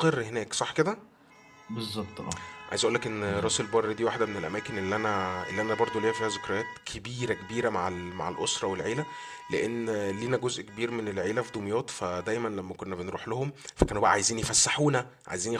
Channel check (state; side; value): identical; both; correlation 1.00